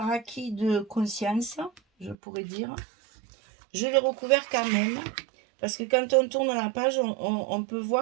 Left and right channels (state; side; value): drops out; left; at 2.1 s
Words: acquis de conscience, je pourrais dire, je l'ai recouvert quand même. Parce que quand on tourne la page, on peut